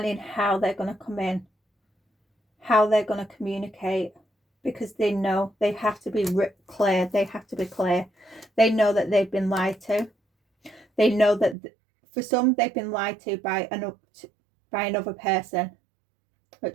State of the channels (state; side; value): drops out; left; at 11.6 s